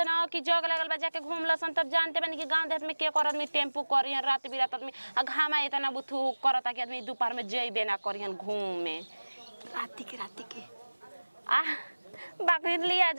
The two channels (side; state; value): both; inverted; correlation -1.00